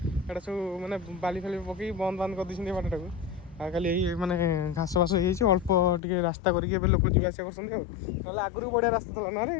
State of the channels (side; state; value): right; drops out; at 6.0 s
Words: ये सब मैंने बाली फाली पकई बंद बंद कर दी बाटा को खाली यही मैंने घास बास हो अल्प टे रास्ता करके लोक जावास कर आगुरी बढ़िया रास्ता था ना